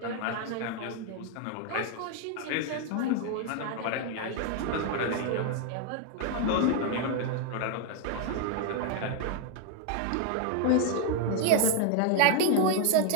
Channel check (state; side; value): different; both; correlation 0.00